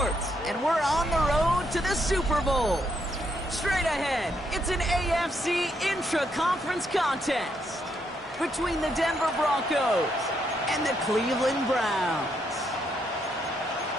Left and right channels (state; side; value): normal; both; correlation 0.76